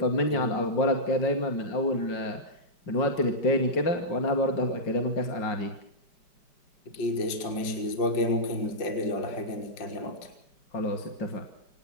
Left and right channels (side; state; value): right; late; 5.1 ms